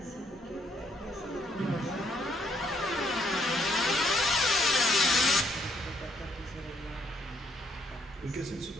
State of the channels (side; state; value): both; normal; correlation 0.70